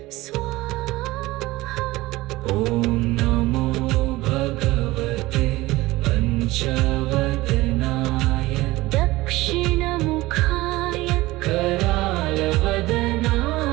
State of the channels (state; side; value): quieter; left; 19.1 dB